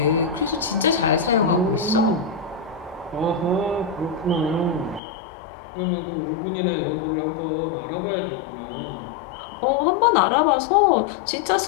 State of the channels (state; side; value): drops out; right; at 5.0 s